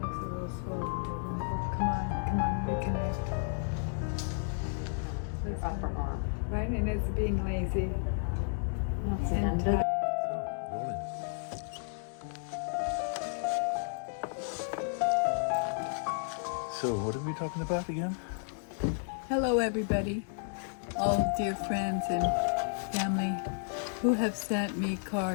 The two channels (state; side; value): silent; right; digital silence